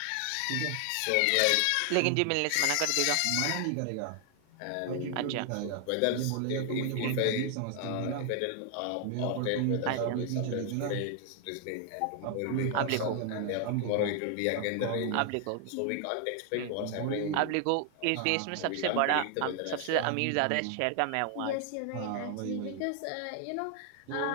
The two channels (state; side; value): different; both; correlation 0.00